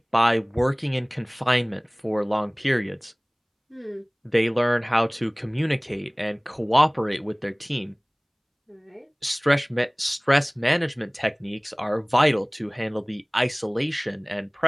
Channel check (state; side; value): identical; both; correlation 1.00